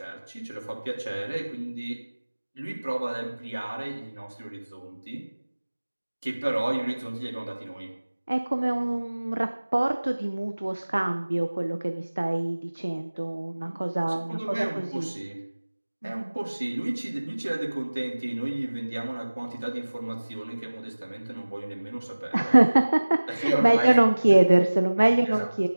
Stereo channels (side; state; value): both; inverted; correlation -1.00